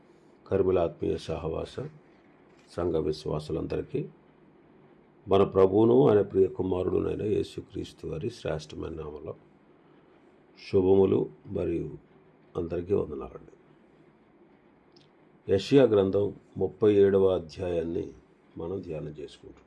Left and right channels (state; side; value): identical; both; correlation 1.00